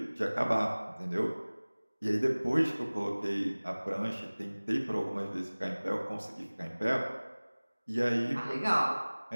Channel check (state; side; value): inverted; both; correlation -1.00